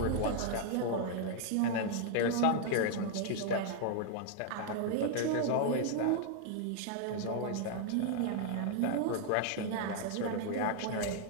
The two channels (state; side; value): different; both; correlation 0.00